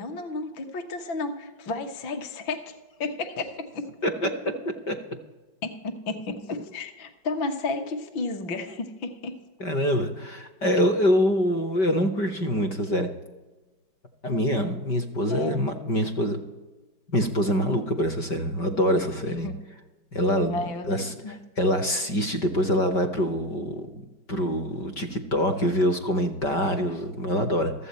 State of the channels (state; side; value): late; right; 5.2 ms